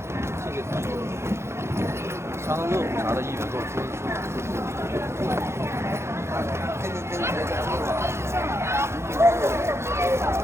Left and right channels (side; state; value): left; late; 0.13 ms